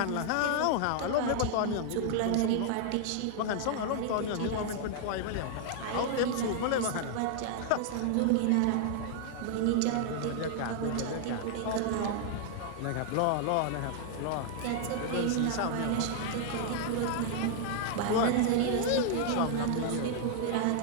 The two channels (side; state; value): both; different; correlation 0.00